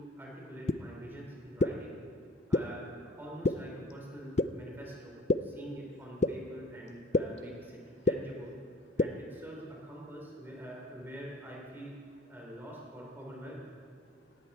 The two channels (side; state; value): both; normal; correlation 0.51